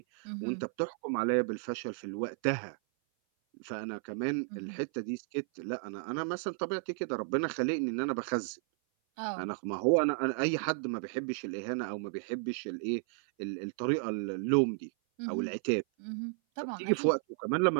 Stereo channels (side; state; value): left; silent; 55 dB below the other